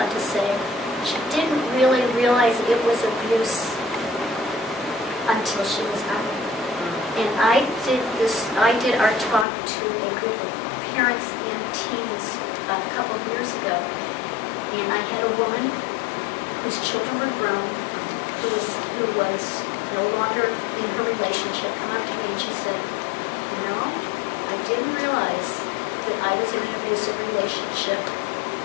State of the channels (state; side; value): drops out; right; at 9.5 s